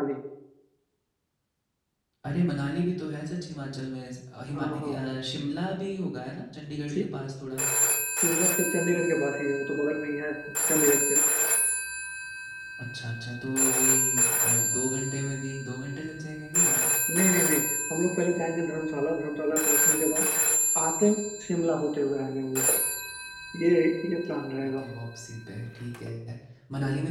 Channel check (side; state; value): both; identical; correlation 1.00